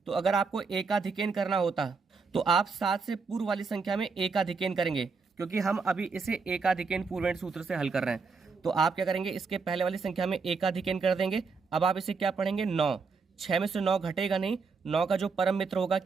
तो अगर आपको एकाधिकन करना होता तो आप 7 से पूर्व वाली संख्या में एकाधिकन करेंगे। क्योंकि हम अभी इसे एकाधिकेन पूर्वेण सूत्र से हल कर रहे हैं। तो आप क्या करेंगे, इसके पहले वाली संख्या में एकाधिकेन कर देंगे। अब आप इसे क्या पढ़ेंगे, 9। 6 में से 9 घटेगा नहीं, 9 का जो परम मित्र होगा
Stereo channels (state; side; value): quieter; left; 4.8 dB